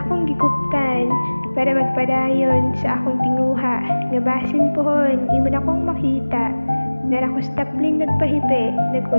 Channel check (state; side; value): inverted; both; correlation -1.00